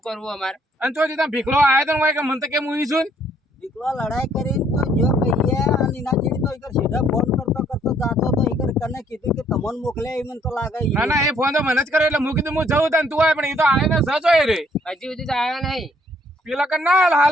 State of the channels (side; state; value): both; normal; correlation 0.66